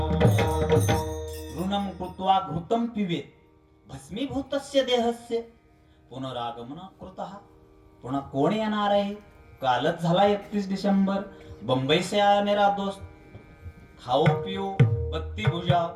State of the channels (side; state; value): both; identical; correlation 1.00